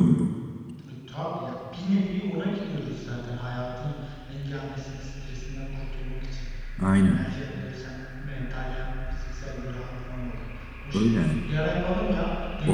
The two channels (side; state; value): both; identical; correlation 1.00